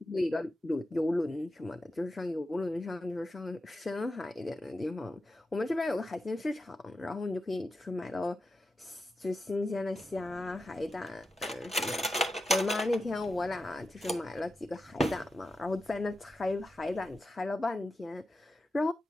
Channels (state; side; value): normal; both; correlation 0.90